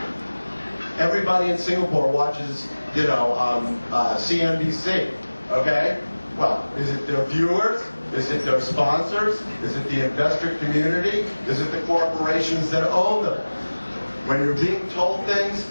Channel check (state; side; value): inverted; both; correlation -1.00